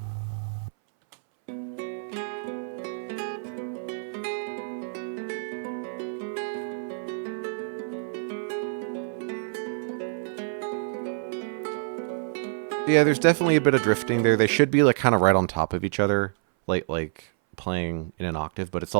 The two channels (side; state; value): left; silent; 60 dB below the other